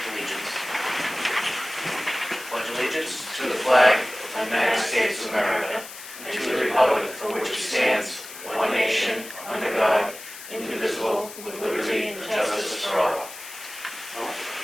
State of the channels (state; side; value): noise; left; hiss, 13 dB below the sound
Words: Allegiance. Pledge allegiance to the flag of the United States of America and to the republic for which it stands, one nation, under God, indivisible, with liberty and justice for all.